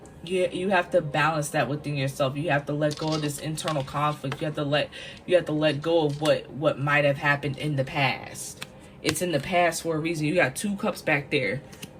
You have to balance that within yourself. You have to let go of this internal conflict. You have to let go of what might have happened in the past. It's in the past for a reason. You got 2 cups back there.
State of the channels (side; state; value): both; identical; correlation 1.00